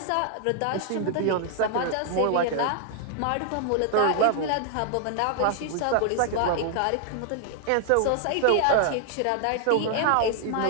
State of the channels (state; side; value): different; both; correlation 0.00